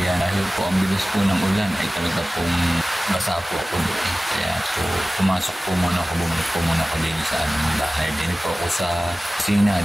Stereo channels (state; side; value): normal; both; correlation 0.97